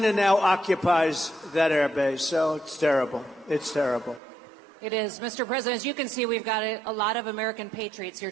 now occupies that air base. So it's terrible. It's terrible. It is. Mr. President, as you can see, we've got a lot of American patriots here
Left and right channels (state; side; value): drops out; left; at 4.2 s